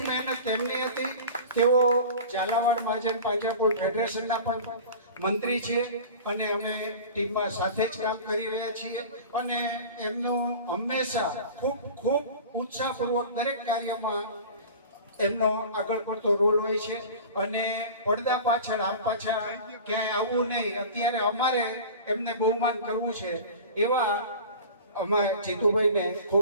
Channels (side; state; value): both; inverted; correlation -0.37